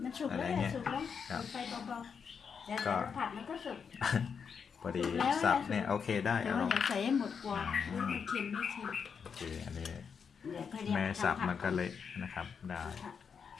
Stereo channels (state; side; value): quieter; right; 6.4 dB